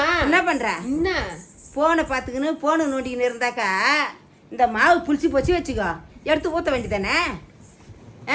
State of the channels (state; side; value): identical; both; correlation 1.00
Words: என்ன பண்ற? என்ன போனை பார்த்துக்கின்னு போனை நோண்டிக்கின்னு இருந்தாக்கா இந்த மாவு புளிச்சு போச்சு வச்சுக்கோ, எடுத்து ஊற்ற வேண்டியதானே?